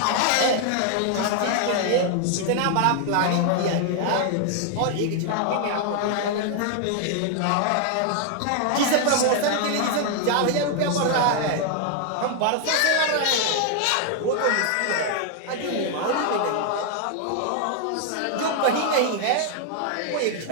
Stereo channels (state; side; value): different; both; correlation 0.00